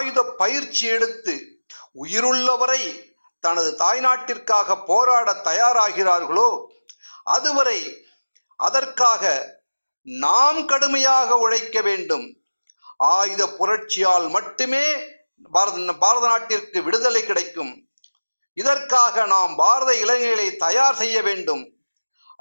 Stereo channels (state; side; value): inverted; both; correlation -1.00